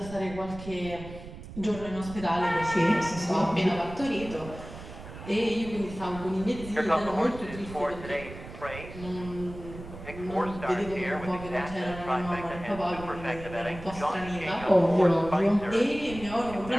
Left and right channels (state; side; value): noise; right; rumble, 13 dB below the sound